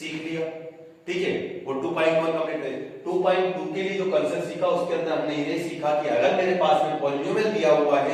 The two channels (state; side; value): identical; both; correlation 1.00